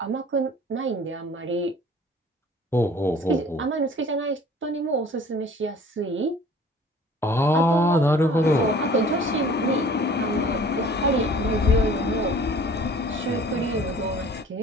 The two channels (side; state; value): both; normal; correlation 0.49